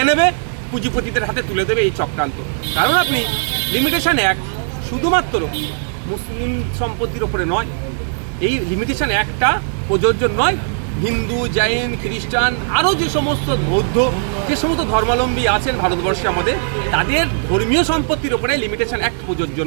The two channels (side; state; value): left; silent; digital silence